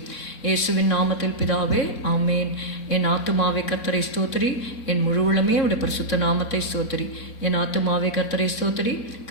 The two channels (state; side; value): late; right; 3.7 ms